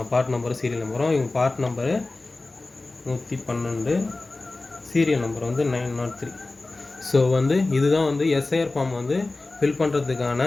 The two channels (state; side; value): quieter; right; 3.2 dB